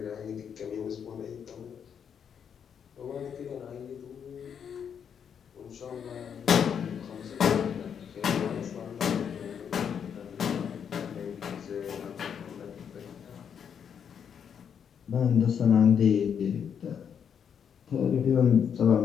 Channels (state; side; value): quieter; right; 7.7 dB